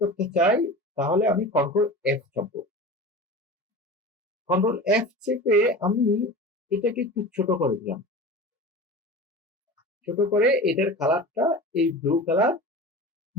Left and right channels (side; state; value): both; normal; correlation 0.33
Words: করতে চাই তাহলে আমি কন্ট্রোল এফ চাপবো। কন্ট্রোল এফ চেপে আমি এটাকে একটু ছোট করে দিলাম। ছোট করে এটার কালারটা এই ব্লু কালার